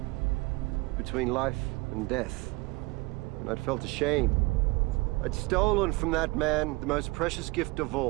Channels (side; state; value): left; quieter; 23.8 dB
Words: between life and death. And I'd felt ashamed. I'd stolen from that man the most precious gift of